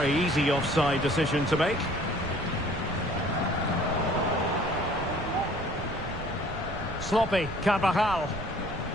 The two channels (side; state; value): right; noise; rumble, 9 dB below the sound